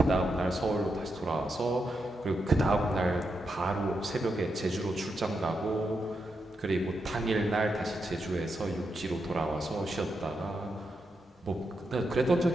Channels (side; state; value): both; normal; correlation 0.84